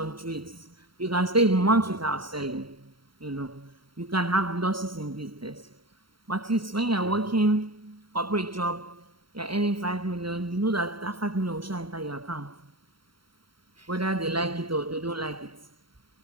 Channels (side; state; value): left; late; 0.73 ms